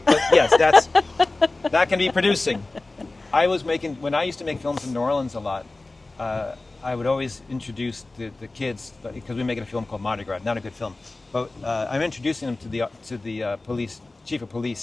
But yes, that can be producing. When I used to make films in New Orleans a lot, I would always introduce the kids, because we make a film called Mardi Gras, not a good film, but I'm introducing them to the police, chief of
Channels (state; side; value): quieter; right; 3.2 dB